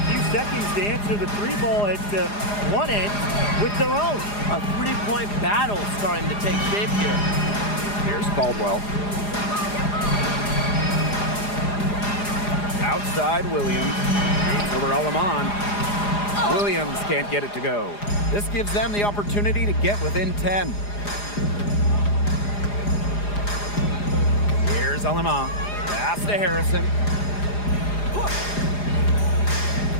seconds to answer the 3 ball at one end with their own. A 3-point battle starting to take shape here. Here's Caldwell. Outside Williams. Over Alamon. Williams can't get it to go. This gives them the opportunity to get within 10. Here's Alamon. Pass to Harrison.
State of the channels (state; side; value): late; right; 4.9 ms